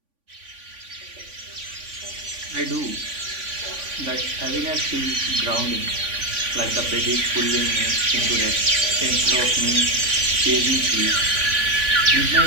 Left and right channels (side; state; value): left; late; 3.5 ms